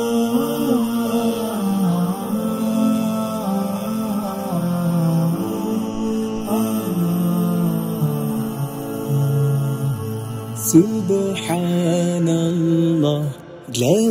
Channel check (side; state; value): both; identical; correlation 1.00